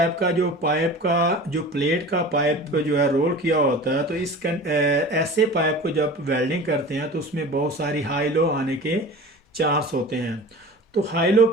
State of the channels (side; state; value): both; normal; correlation 0.37